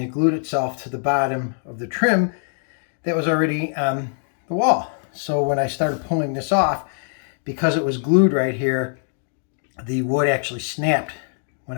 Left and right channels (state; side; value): silent; right; digital silence